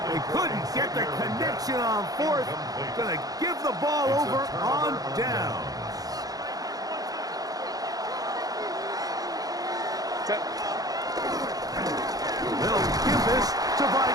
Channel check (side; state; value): left; late; 0.18 ms